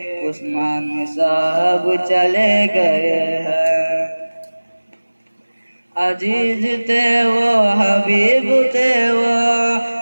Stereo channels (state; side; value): inverted; both; correlation -1.00